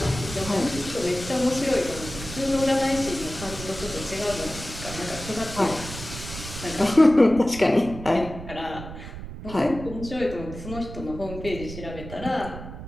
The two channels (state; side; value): noise; right; rumble, 11 dB below the sound